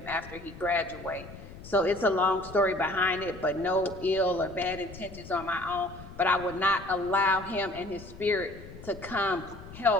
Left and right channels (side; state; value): left; noise; rumble, 16 dB below the sound